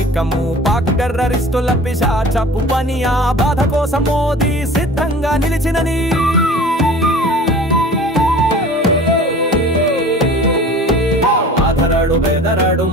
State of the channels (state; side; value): normal; both; correlation 0.42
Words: పాక్ టెర్రరిస్టుల పిశాచపు పని ఆ బాధ కోసం మోదీ సిద్ధంగా నిలిచినని ఆధరడు బెదరడు